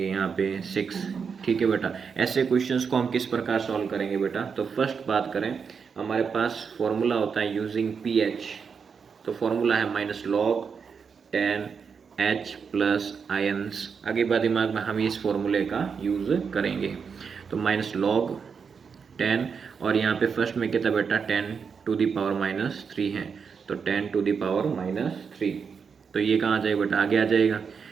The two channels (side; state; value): left; quieter; 6.1 dB